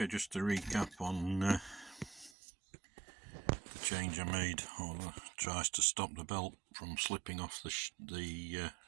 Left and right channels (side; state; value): left; drops out; at 2.4 s